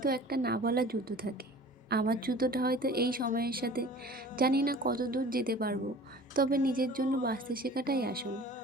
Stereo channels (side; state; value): both; normal; correlation 0.44